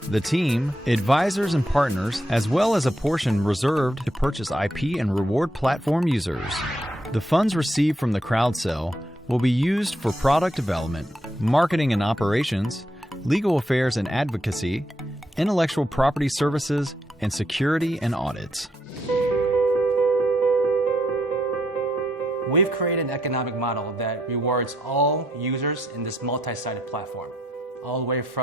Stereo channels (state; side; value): normal; both; correlation 0.77